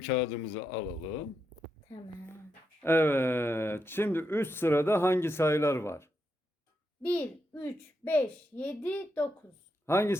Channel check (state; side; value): normal; both; correlation 0.83